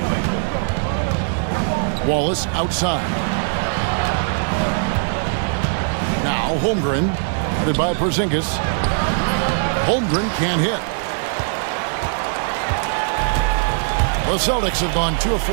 Wallace outside. Now Holmgren, headed by Porzingis. Holmgren can't hit. The Celtics have gone 2 of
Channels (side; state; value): left; silent; 66 dB below the other